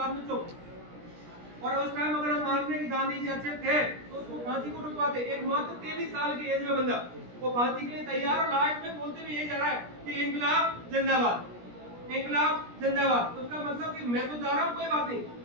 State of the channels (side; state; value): left; late; 17 ms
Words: में चुप। और उस टाइम अगर हम मानते हैं कि गांधी जी अच्छे थे तो उसको फांसी को रुकवाते। एक मात्र 23 साल की एज में बंदा वो फांसी के लिए तैयार, और लास्ट में बोलते हुए यही जा रहा है कि इंकलाब जिंदाबाद, इंकलाब जिंदाबाद। उसका मतलब कि मैं तो जा रहा हूँ, कोई बात नहीं।